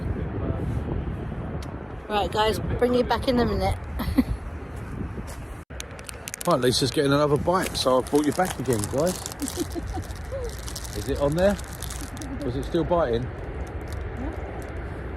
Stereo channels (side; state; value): both; identical; correlation 1.00